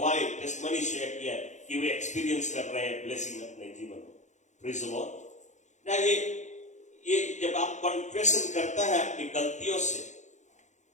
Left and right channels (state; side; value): late; right; 0.34 ms